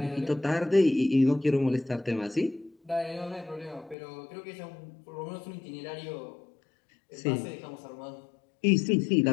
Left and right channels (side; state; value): right; drops out; at 4.0 s